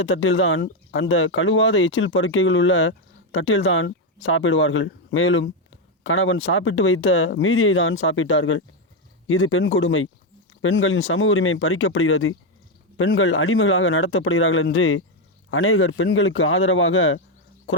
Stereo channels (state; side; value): normal; both; correlation 0.06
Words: தட்டில்தான் அந்த கழுவாத எச்சில் பருக்கைகள் உள்ள தட்டில்தான் சாப்பிடுவார்கள். மேலும் கணவன் சாப்பிட்டு வைத்த மீதியை தான் சாப்பிட்டார்கள். இது பெண் கொடுமை. பெண்களின் சம உரிமை பறிக்கப்படுகிறது. பெண்கள் அடிமைகளாக நடத்தப்படுகிறார்கள் என்று அநேகர் பெண்களுக்கு ஆதரவாக